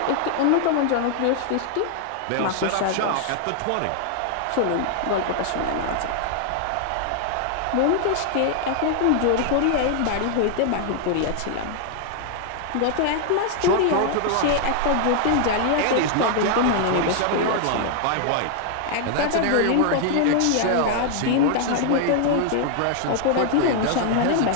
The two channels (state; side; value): different; both; correlation 0.00